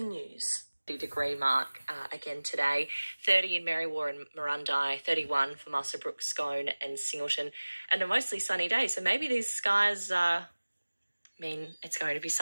News. Degree mark again today, 30 in Merriwa and Murrundi, 31 for Muswellbrook, Scone and Singleton, and a mostly sunny day. So maybe these skies mean it's going to be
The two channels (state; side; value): inverted; both; correlation -1.00